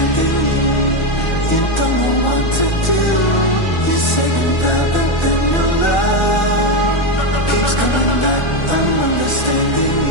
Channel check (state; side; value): late; right; 1.4 ms